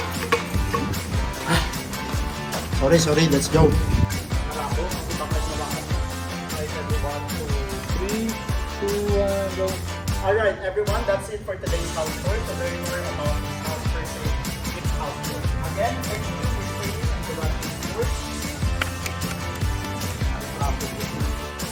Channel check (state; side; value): identical; both; correlation 1.00